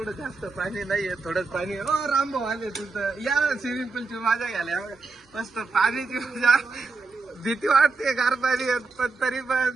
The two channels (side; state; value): left; quieter; 4.0 dB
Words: जास्त पाणी नाहीये थोडंच पाणी. ओ रामभाऊ आले तुमचं या स्विमिंग पूलची मजा घ्यायला मस्त पाण्याची मजा. भीती वाटते गार पाणी पण तरी